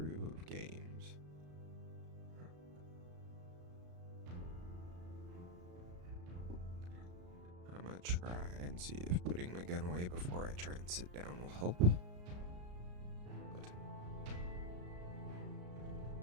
of games. I'm gonna try and see if putting my gun away before I try and sit down will help. But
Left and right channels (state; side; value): late; left; 34 ms